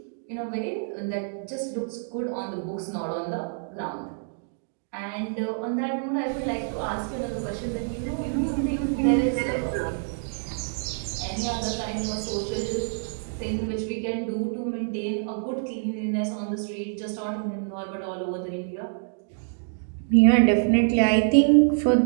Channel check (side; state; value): left; silent; digital silence